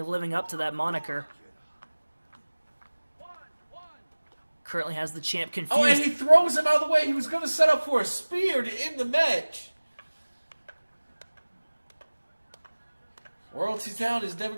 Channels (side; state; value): both; inverted; correlation -1.00